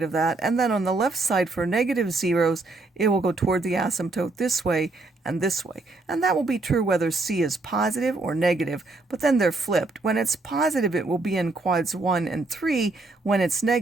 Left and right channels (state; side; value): quieter; left; 3.2 dB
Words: of that, and then on the left side for negative zeros, it will go toward the asymptote this way and this way. And that will be true whether c is positive or negative, but then they're flipped. When it's positive, it will be in quads 1 and 3. When it's